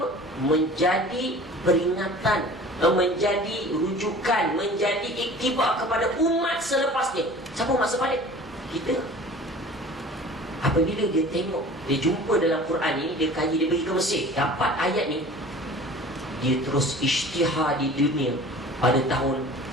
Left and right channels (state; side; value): normal; both; correlation 0.43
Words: Menjadi peringatan, menjadi rujukan, menjadi iktibar kepada umat selepasnya. Siapa umat selepas kita? Apabila dia tengok, dia jumpa dalam Quran ni, dia kaji, dia pergi ke Mesir, dapat ayat ni, dia terus isytihar di dunia. Pada tahun